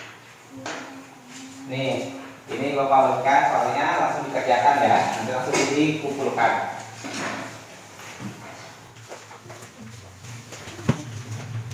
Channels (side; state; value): both; identical; correlation 1.00